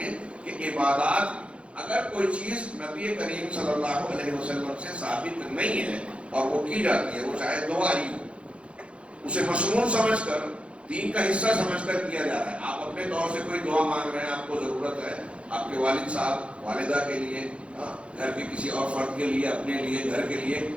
کہ عبادات اگر کوئی چیز نبی کریم صلی اللہ علیہ وسلم سے ثابت نہیں ہے اور وہ کی جاتی ہے، وہ چاہے دعا ہی ہو، اسے مصنون سمجھ کر دین کا حصہ سمجھ کر کیا جا رہا ہے. آپ اپنے طور سے کوئی دعا مانگ رہے ہیں، آپ کو ضرورت ہے آپ کے والد صاحب والدہ کے لیے، گھر کے کسی اور فرد کے لیے، اپنے لیے، گھر کے لیے،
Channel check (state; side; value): late; left; 0.060 ms